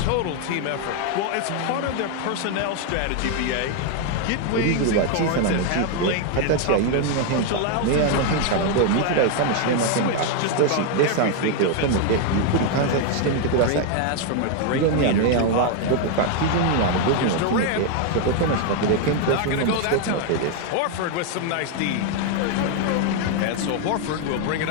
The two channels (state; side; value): different; both; correlation 0.01